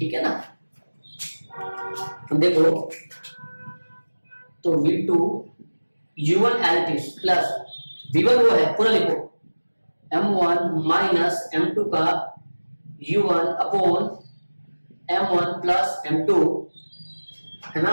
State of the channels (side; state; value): both; inverted; correlation -1.00